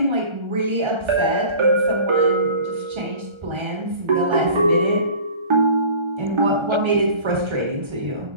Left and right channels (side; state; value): left; late; 1.3 ms